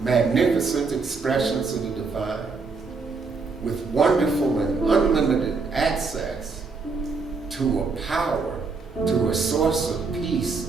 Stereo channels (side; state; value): left; quieter; 4.4 dB